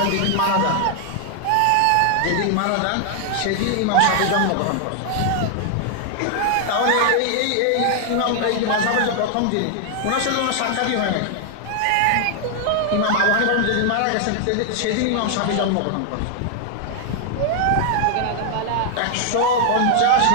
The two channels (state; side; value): different; both; correlation 0.00